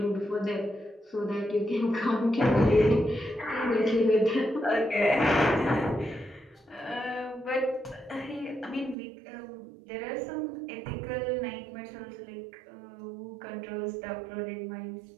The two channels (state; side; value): drops out; left; at 9.0 s